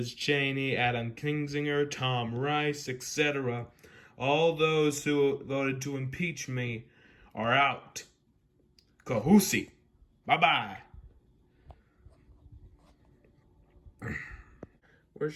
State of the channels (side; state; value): both; identical; correlation 1.00